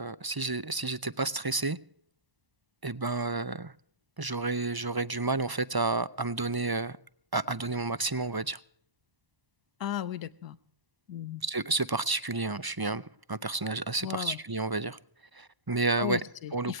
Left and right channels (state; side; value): late; left; 1.0 ms